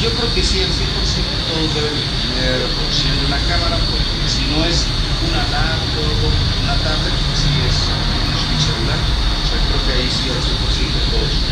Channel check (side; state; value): both; identical; correlation 1.00